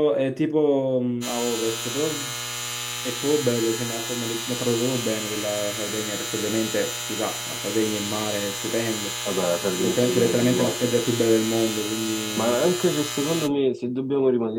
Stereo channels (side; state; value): both; identical; correlation 1.00